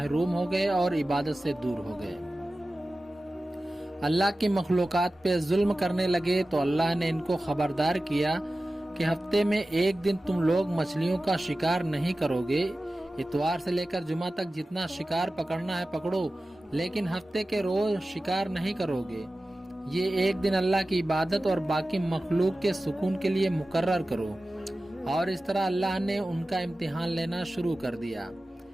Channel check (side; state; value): both; normal; correlation 0.95